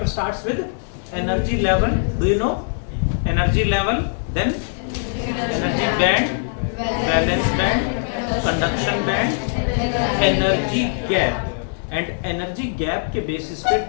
starts with energy level. Do you know energy level, then energy band, valence band, conduction band, energy gap, and energy gap के बेसिस पे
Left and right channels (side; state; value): right; silent; digital silence